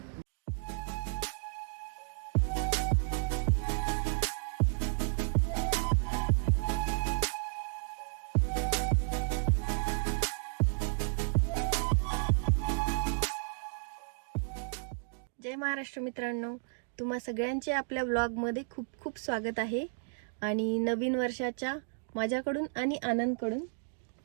जय महाराष्ट्र मित्रांनो, तुम्हा सगळ्यांचे आपल्या व्लॉगमध्ये खूप खूप स्वागत आहे। आणि नवीन वर्षाच्या माझ्याकडून आणि आनंदकडून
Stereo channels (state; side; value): silent; left; digital silence